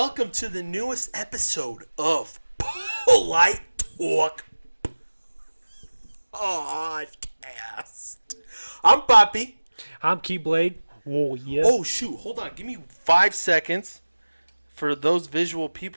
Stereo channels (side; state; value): both; inverted; correlation -1.00